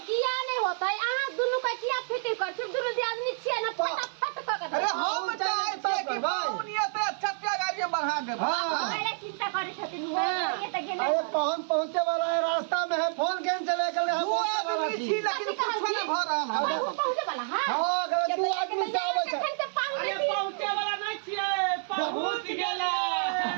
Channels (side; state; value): left; silent; 59 dB below the other